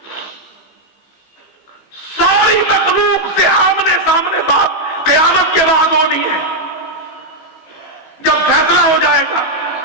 ساری مخلوق سے آمنے سامنے بات قیامت کے بعد ہونی ہے، جب فیصلہ ہو جائے گا.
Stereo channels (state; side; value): late; right; 16 ms